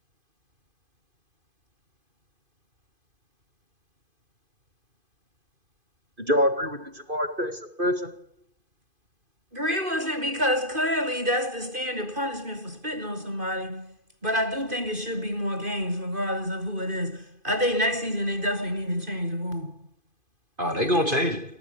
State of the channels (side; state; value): left; late; 2.5 ms